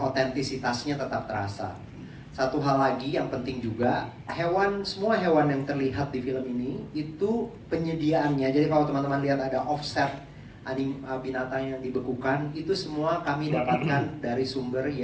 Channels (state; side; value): identical; both; correlation 1.00